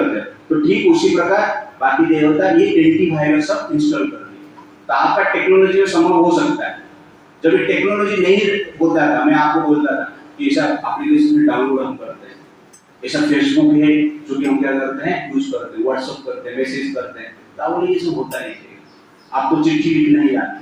हो, तो ठीक उसी प्रकार बाकी देवता ये एंटीवायरस सब इंस्टॉल कर दिए। तो आपका टेक्नोलॉजी में संभव हो सकता है। जब ये टेक्नोलॉजी नहीं होता था, मैं आपको बोलता था कि ऐसा एप्लीकेशन डाउनलोड हम करते हैं, ऐसा फेसबुक है जो कि हम क्या करते हैं, यूज करते हैं, व्हाट्सएप करते हैं, मैसेज करते हैं, तो ये सब होता नहीं है, आपको चिट्ठी लिखना ही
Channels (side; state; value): both; identical; correlation 1.00